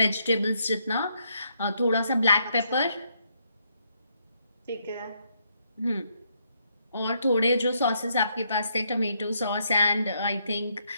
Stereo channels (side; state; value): both; inverted; correlation -0.76